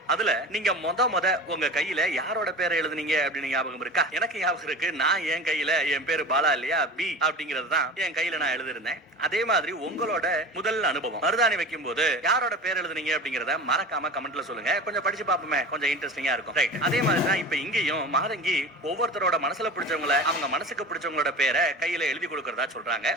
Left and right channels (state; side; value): normal; both; correlation 0.34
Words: அதுல நீங்க முத உங்க கையில யாரோட பேரை எழுதுனீங்க அப்படின்னு ஞாபகம் இருக்கா? எனக்கு ஞாபகம் இருக்கு. நான் என் கையில என் பேரு பாலா இல்லையா, பி அப்படிங்கறது தான் என் கையில நான் எழுதிருந்தேன். அதே மாதிரி உங்களோட முதல் அனுபவம் மருதாணி வைக்கும் போது யாரோட பேர் எழுதுனீங்க அப்படிங்கறத மறக்காம கமெண்ட்ல சொல்லுங்க. கொஞ்சம் படிச்சு பாப்போமே, கொஞ்சம் இன்ட்ரெஸ்டிங்கா இருக்கும். ரைட். அதே மாதிரி தான் இப்ப இங்கேயும் மாதங்கி ஒவ்வொருத்தரோட மனசுல பிடிச்சவங்கள அவங்க மனசுக்கு பிடிச்சவங்களோட பேரை கையில எழுதி கொடுக்கறதா சொல்றாங்க.